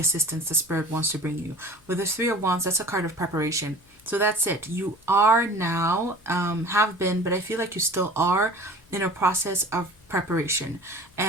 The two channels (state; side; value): noise; left; hum, 30 dB below the sound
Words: the spirit wants to bring you. With the Three of Wands, that's a card of preparation. So that's it. You are now, have been, but I feel like you still are in a process of preparation.